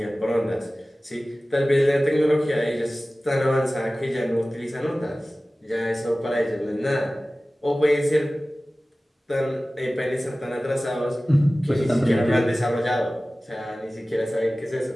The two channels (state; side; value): normal; both; correlation 0.97